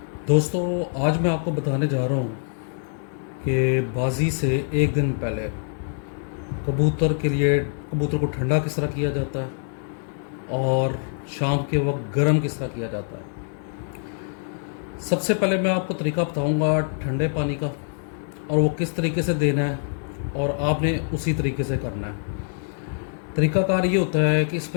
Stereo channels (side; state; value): right; silent; 62 dB below the other